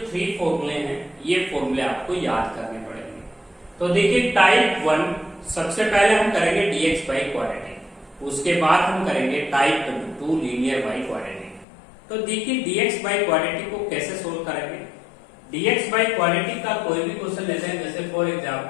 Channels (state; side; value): drops out; right; at 11.7 s